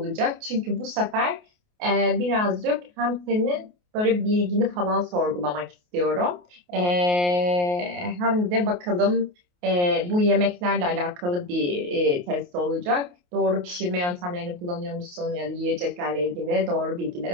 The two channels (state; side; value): late; left; 28 ms